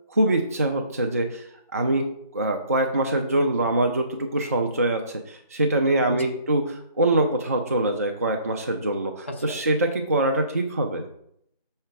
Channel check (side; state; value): both; inverted; correlation -0.57